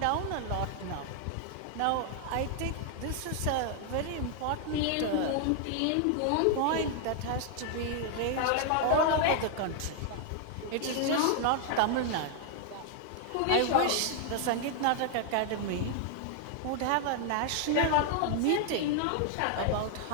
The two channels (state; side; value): different; both; correlation 0.00